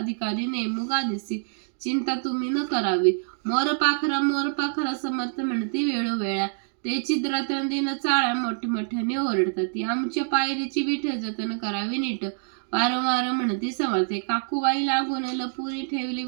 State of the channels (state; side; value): silent; left; digital silence